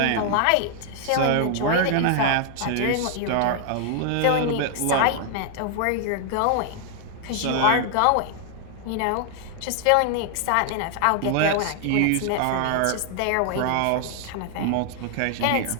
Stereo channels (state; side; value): different; both; correlation 0.00